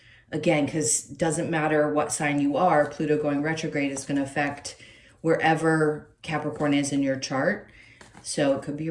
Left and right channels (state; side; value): identical; both; correlation 1.00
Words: again, because it doesn't matter what sign you are, Pluto going retrograde is going to affect wherever Capricorn is in your chart. So it could be